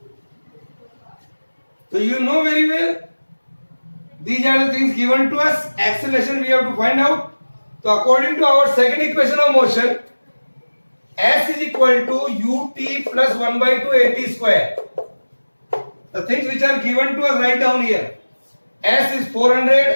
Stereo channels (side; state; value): both; inverted; correlation -1.00